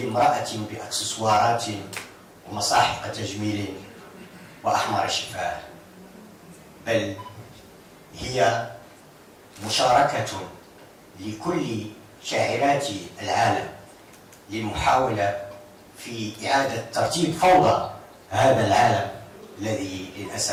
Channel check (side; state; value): both; identical; correlation 1.00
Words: بأكسسوارات ومصاحف تجميل وأحمر شفاه، بل هي مشاركة لكل شاعرات العالم للمحاولة في إعادة ترتيب فوضى هذا العالم الذي